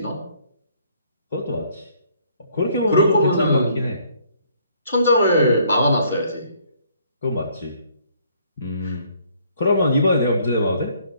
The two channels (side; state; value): both; inverted; correlation -0.64